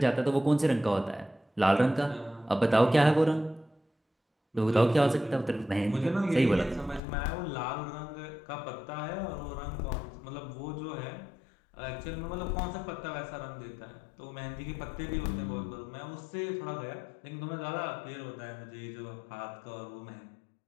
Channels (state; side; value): drops out; right; at 7.0 s